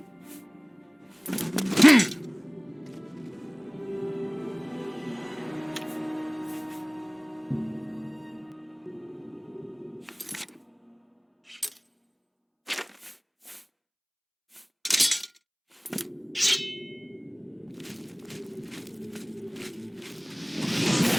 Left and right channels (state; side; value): identical; both; correlation 1.00